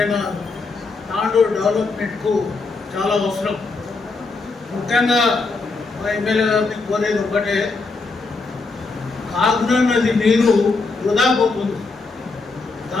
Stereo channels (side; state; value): right; quieter; 3.9 dB